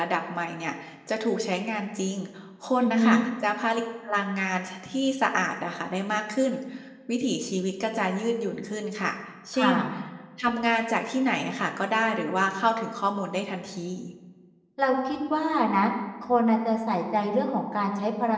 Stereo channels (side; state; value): both; identical; correlation 1.00